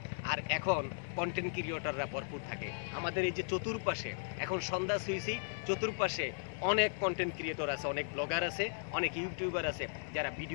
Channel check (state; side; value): silent; right; 53 dB below the other